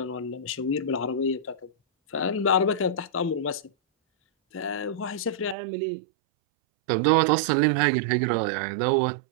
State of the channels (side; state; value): left; drops out; at 5.6 s